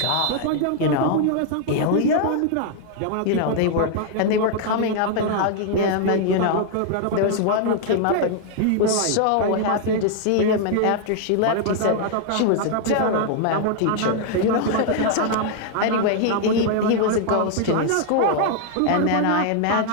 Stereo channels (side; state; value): both; different; correlation 0.00